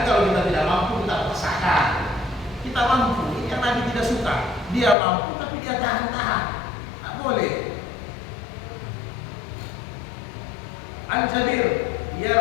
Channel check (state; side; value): drops out; right; at 5.0 s